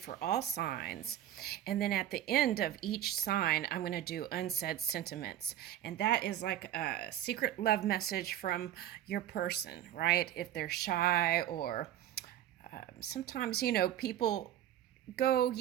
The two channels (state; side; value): quieter; left; 11.8 dB